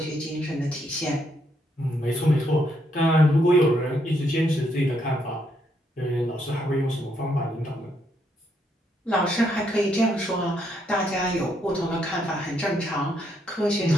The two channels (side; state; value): both; normal; correlation 0.75